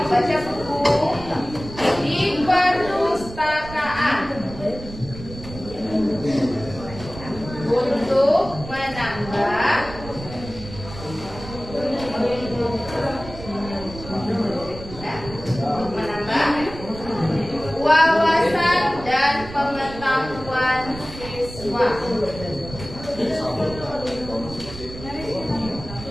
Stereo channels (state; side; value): noise; right; rumble, 13 dB below the sound